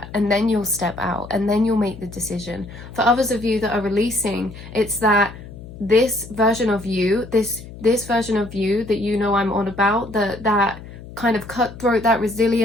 and then you'll step out, and then you'll make the decision. For others of you that are releasing, it's that this version of you, this version of you that you know I'm on about, that kind of cutthroat, that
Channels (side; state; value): left; noise; hum, 15 dB below the sound